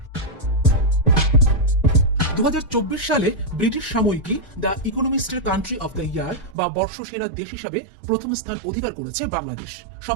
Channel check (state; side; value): drops out; left; at 6.6 s